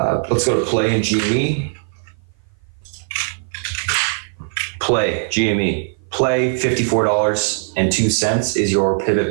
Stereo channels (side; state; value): left; silent; 56 dB below the other